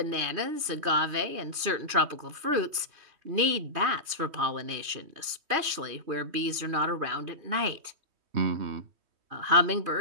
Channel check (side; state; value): left; late; 3.2 ms